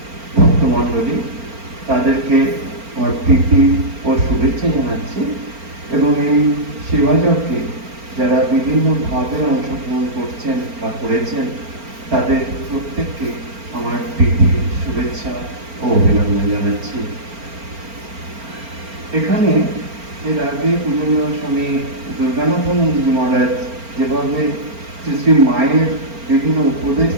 ভক্তমণ্ডলী, তাদেরকে আমার প্রীতি ও শুভেচ্ছা জানাচ্ছি এবং এই সেবাযজ্ঞে যারা বিভিন্নভাবে অংশগ্রহণ করছেন বা করেছেন তাদের প্রত্যেককে আমার প্রীতি, শুভেচ্ছা ও অভিনন্দন জানাচ্ছি। এখানে এর আগে পূজনীয় স্বামী দুর্গানাথানন্দজি মহারাজ যেভাবে শ্রী শ্রী মায়ের বিভিন্ন উপদেশ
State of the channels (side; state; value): left; late; 4.4 ms